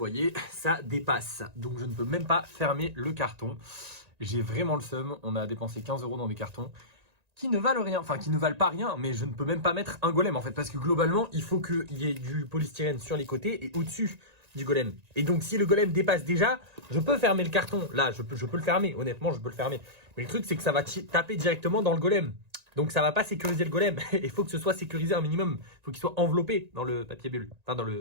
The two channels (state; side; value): late; left; 1.9 ms